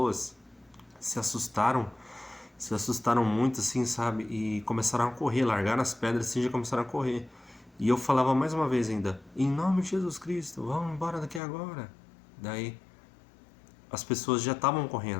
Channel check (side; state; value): right; drops out; at 11.4 s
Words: se assustaram, se assustaram muito, assim, sabe? E começaram a correr, largaram as pedras assim, já começaram a correr. E eu falava mais uma vez ainda: em nome de Jesus Cristo, vão embora daqui agora. Daí as pessoas já estavam